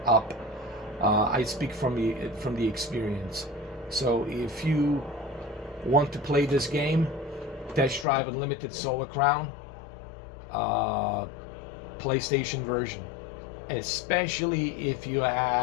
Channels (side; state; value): right; drops out; at 8.1 s